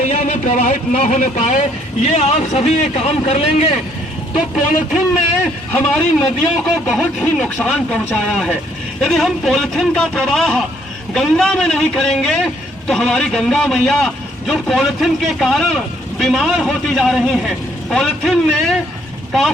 में प्रवाहित न होने पाए, ये आप सभी ये काम कर लेंगे तो पॉलिथीन ने हमारी नदियों को बहुत ही नुकसान पहुंचाया है। यदि हम पॉलिथीन का प्रवाह गंगा में नहीं करेंगे तो हमारी गंगा मैया जो पॉलिथीन के कारण बीमार होती जा रही हैं, पॉलिथीन ने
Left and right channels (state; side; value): normal; both; correlation 0.67